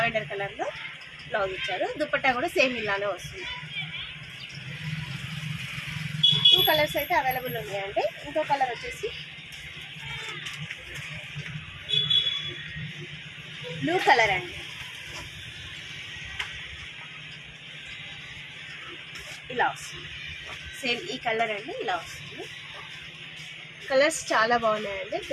కలర్లో బ్లౌజ్ ఇచ్చారు. దుపట్టా కూడా సేమ్ ఇలానే వస్తుంది. 2 కలర్స్ అయితే అవైలబుల్ ఉన్నాయండి. ఇంకో కలర్ వచ్చేసి బ్లూ కలర్ అండి. ఇలా వస్తుంది. సేమ్ ఈ కలర్ అండి. ఇలా వస్తుంది. కలర్స్ చాలా బాగున్నాయండి.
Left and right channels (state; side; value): identical; both; correlation 1.00